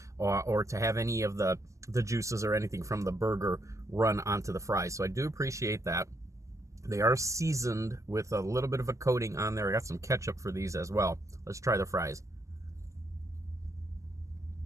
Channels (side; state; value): left; late; 0.16 ms